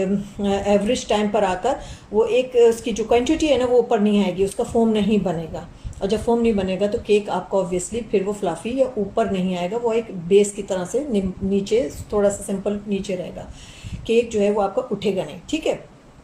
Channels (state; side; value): identical; both; correlation 1.00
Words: टाइम पर आकर वो एक उसकी जो क्वांटिटी है ना वो ऊपर नहीं आएगी, उसका फोम नहीं बनेगा। और जब फोम नहीं बनेगा तो केक आपका ऑब्वियसली फिर वो फ्लफी या ऊपर नहीं आएगा, वो एक बेस की तरह से नीचे थोड़ा सा सिंपल नीचे रहेगा। केक जो है वो आपका उठेगा नहीं। ठीक है।